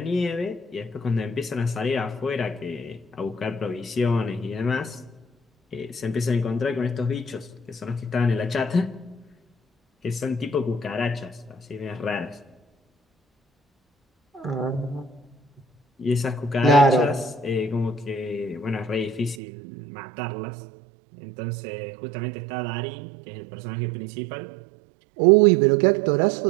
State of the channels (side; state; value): left; drops out; at 19.4 s